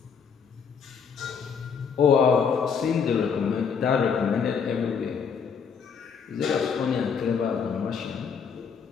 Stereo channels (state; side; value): quieter; right; 6.4 dB